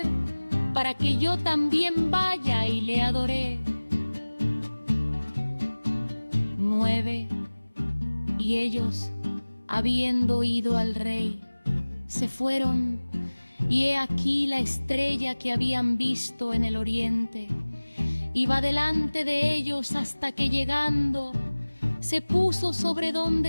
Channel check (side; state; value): both; inverted; correlation -1.00